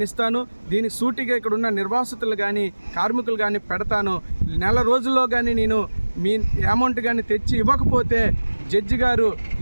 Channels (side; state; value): both; inverted; correlation -1.00